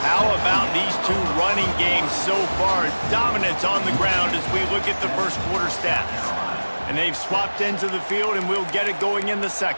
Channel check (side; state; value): both; inverted; correlation -1.00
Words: How about these two running games so far? Dominance on the ground as we look at the first quarter stats. And they've swapped ends of the field, and we'll get it going in the